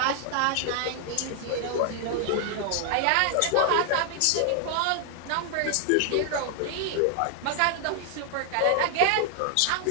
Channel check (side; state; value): both; different; correlation 0.00